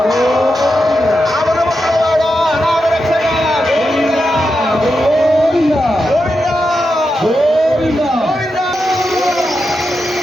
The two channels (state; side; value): normal; both; correlation 0.88